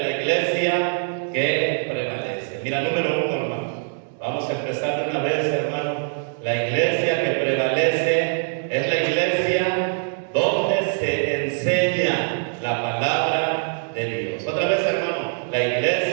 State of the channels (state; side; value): silent; left; digital silence